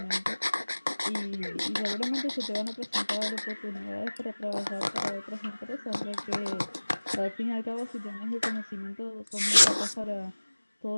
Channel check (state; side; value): inverted; both; correlation -1.00